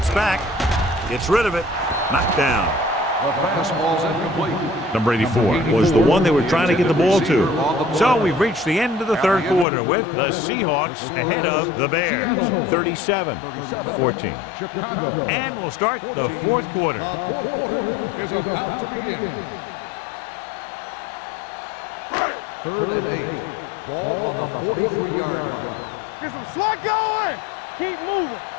back. Gets rid of it. Knocked down. The pass ball's incomplete. Number 84 was the one they were trying to get the ball to. So we've reached the end of the third quarter with the Seahawks ahead of the Bears. 37-14. Chicago. And we'll start the fourth quarter. The fourth quarter is about to begin. 3rd and 8. Ball on the 43-yard line. Get some slot going. Keep moving.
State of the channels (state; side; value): drops out; right; at 9.7 s